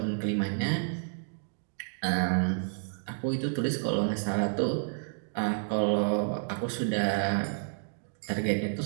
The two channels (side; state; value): left; silent; digital silence